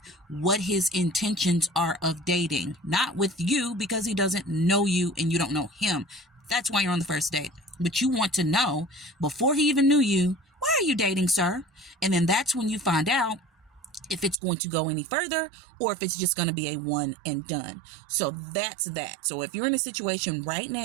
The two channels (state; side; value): drops out; left; at 14.4 s